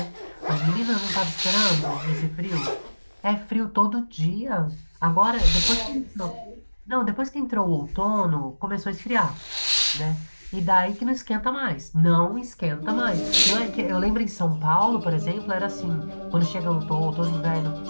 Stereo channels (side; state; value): both; inverted; correlation -1.00